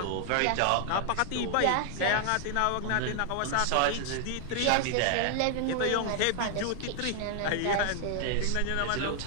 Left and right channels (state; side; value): different; both; correlation 0.00